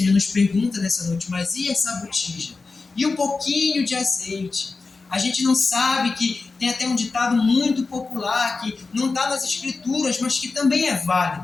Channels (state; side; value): quieter; right; 4.1 dB